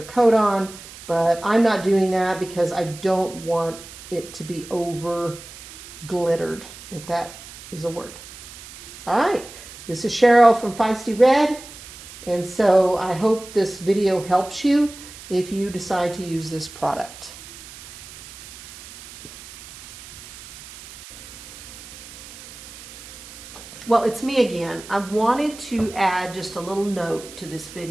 coat on, but I'm not doing that because I don't want it to be over glittered, if that is a word. All right, this is Cheryl from Feisty Red, and so I hope this video helps you if you decide to use this product. Well, it's me again. I wanted to add just a little note to this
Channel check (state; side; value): noise; right; hiss, 16 dB below the sound